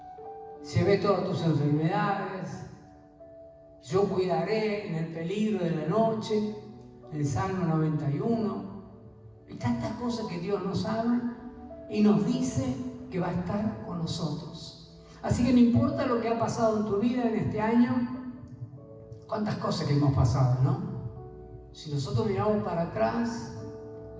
Llevé todas tus enfermedades. Yo cuidaré en el peligro de la noche. El Salmo 91. Y tantas cosas que Dios nos habla y nos dice que va a estar con nosotros. Así que no importa lo que ha pasado en tu vida en este año, cuántas cosas que hemos pasado, ¿no? Si nosotros miramos para atrás,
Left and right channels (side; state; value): both; identical; correlation 1.00